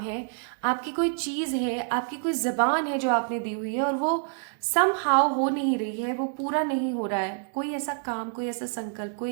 है, आपकी कोई चीज है, आपकी कोई जबान है जो आपने दी हुई है और वो समहाउ हो नहीं रही है, वो पूरा नहीं हो रहा है। कोई ऐसा काम, कोई ऐसा संकल्प,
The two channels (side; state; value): left; silent; digital silence